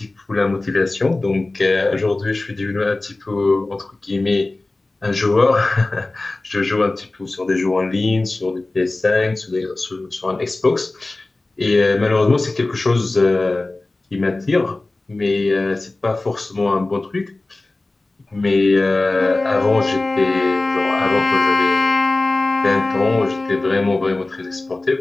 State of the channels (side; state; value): right; quieter; 3.0 dB